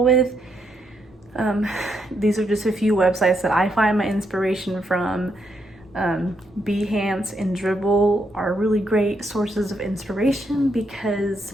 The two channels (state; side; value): normal; both; correlation 0.78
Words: with. These are just a few websites that I find my inspiration from. Behance and Dribble are really great sources of inspiration